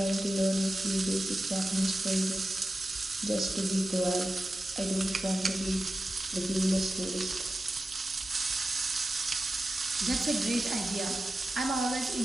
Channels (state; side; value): normal; both; correlation 0.93